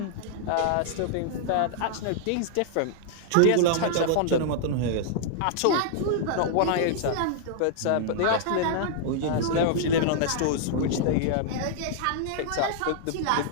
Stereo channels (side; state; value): both; different; correlation -0.01